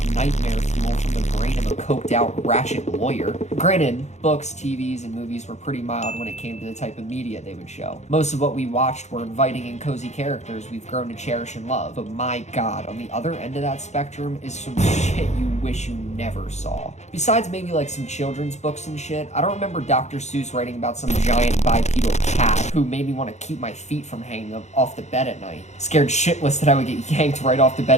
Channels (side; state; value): right; late; 0.33 ms